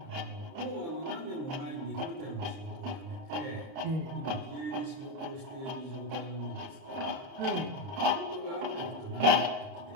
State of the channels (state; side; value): late; left; 30 ms